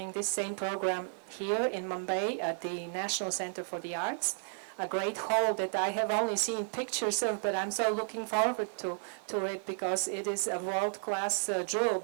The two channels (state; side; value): silent; left; digital silence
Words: this same program here in Mumbai at the National Center for the Arts, a great hall that I have only seen pictures of, but I'm so looking forward to it because it is a world-class jewel